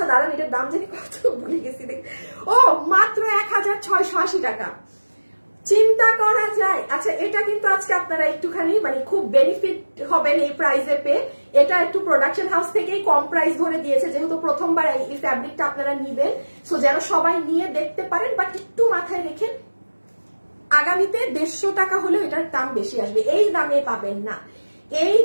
দাঁড়ান, এটার দাম জানি কত ভুলে গেছি। ও মাত্র 1680 টাকা। চিন্তা করা যায়। আচ্ছা, এটা কিন্তু আজকে আপনারা একটুখানি মানে খুব বেনিফিট হবেন এই প্রাইসে পেয়ে। এটা একটু প্রোডাকশন হাউস থেকেই কম প্রাইস ধরে দিয়েছে, যেহেতু প্রথমবার এই ফ্যাব্রিকটা আপনারা নিবেন। সো যেন সবাই নিয়ে দেখতে পারেন, বাট একটু মাথায় রেখেন আগামীতে 150 টাকা হলেও এটার দাম বেশি আসবে। এই দামে পাবেন না, এই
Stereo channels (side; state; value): both; inverted; correlation -1.00